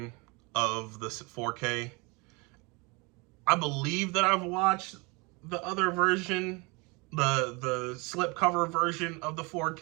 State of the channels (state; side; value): quieter; left; 27.8 dB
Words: of the 4K. I believe that I've watched the other version, the slipcover version of the